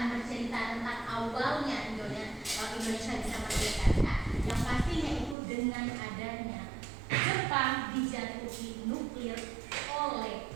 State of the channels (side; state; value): left; drops out; at 5.4 s